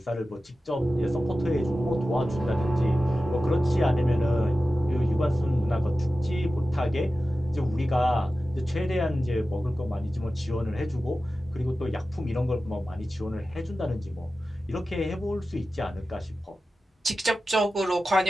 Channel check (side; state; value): both; normal; correlation 0.94